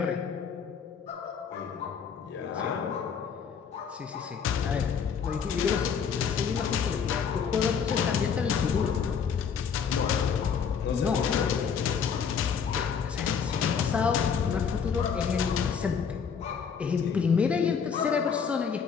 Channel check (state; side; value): quieter; right; 6.7 dB